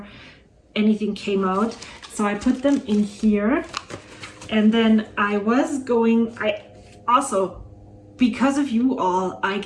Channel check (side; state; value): both; identical; correlation 1.00